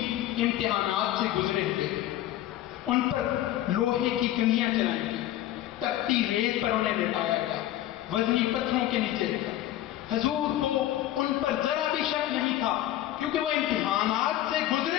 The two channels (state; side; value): quieter; right; 13.6 dB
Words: امتحانات سے گزرے ہوئے تھے. ان پر لوہے کی کنگھیاں چلائی گئی، تپتی ریت پر انہیں لٹایا گیا، وزنی پتھروں کے نیچے رکھا. حضور کو ان پر ذرا بھی شک نہیں تھا، کیونکہ وہ امتحانات سے